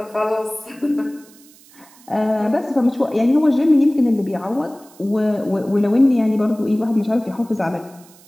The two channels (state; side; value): noise; right; hiss, 26 dB below the sound